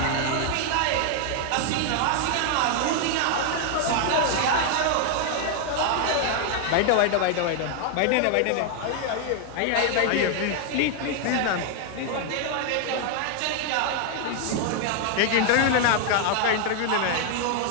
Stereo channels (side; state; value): both; different; correlation 0.00